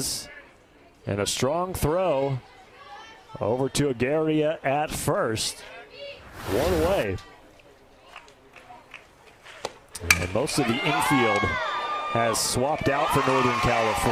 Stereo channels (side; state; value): both; identical; correlation 1.00